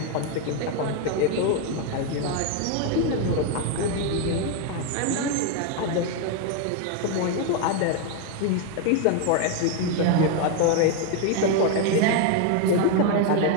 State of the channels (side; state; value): both; different; correlation 0.01